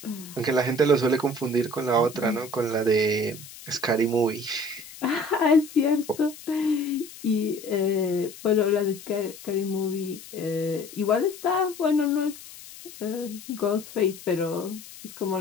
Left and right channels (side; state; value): left; noise; hiss, 17 dB below the sound